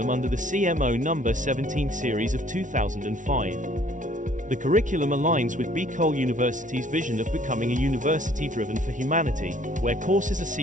under the CMO No. 17 series of 2005. The curriculum aligns with Bicol University's vision of becoming a university driven for humanity, where courses are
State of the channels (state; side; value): late; left; 0.37 ms